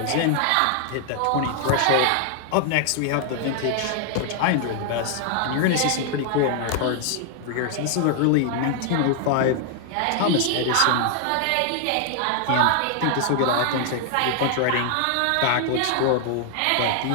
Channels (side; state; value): both; different; correlation 0.00